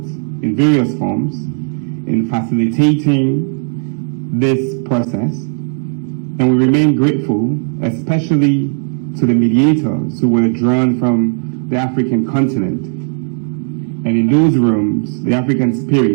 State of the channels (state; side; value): silent; left; digital silence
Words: in various forms in facilitating this process. And we remain grateful, especially to the mediators who were drawn from the African continent. And in those rooms, the African